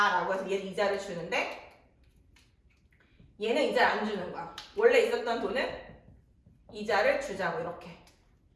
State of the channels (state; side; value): identical; both; correlation 1.00